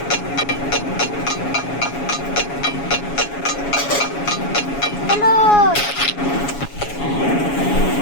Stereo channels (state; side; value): late; right; 7.2 ms